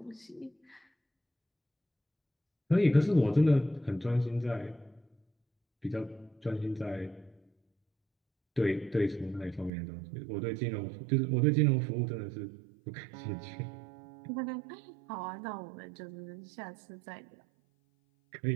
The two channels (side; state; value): left; drops out; at 9.7 s